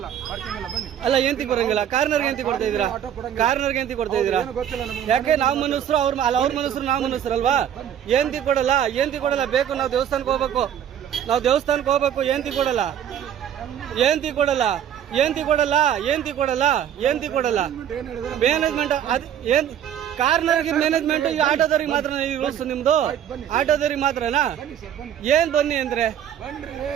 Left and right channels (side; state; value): left; quieter; 9.7 dB